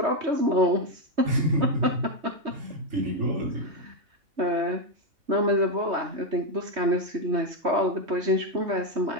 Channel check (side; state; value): left; late; 3.2 ms